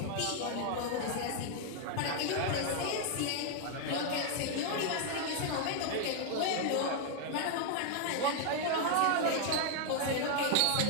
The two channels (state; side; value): different; both; correlation 0.00